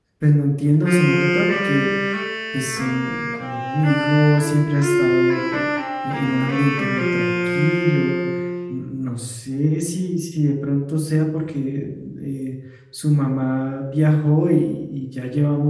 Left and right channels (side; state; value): both; identical; correlation 1.00